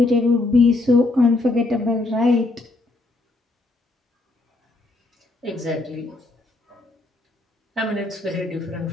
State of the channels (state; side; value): quieter; right; 3.0 dB